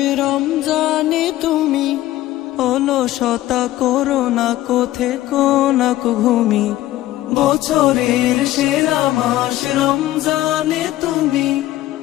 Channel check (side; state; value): right; quieter; 15.2 dB